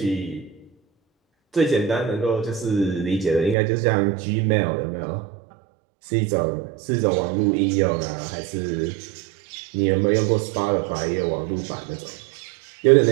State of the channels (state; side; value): drops out; left; at 3.6 s